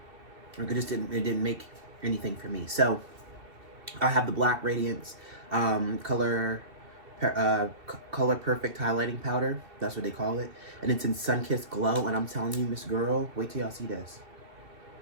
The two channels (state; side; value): late; left; 2.7 ms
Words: make anything for me. So I have the Black Radiance color perfect highlighting powder. That's what they call it, and it's in Sunkissed Glow. And I'm telling you, Miss Girl, wait till y'all see this.